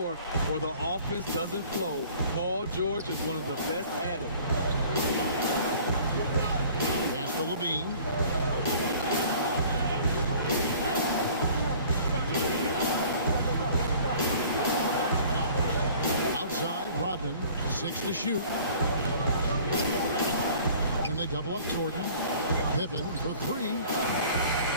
or the offense doesn't flow. Paul George is one of the best at it. Pass to Levine. Outside, Rodman, 6 to shoot. And they double up Jordan. Pippen for 3.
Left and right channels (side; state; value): both; inverted; correlation -0.50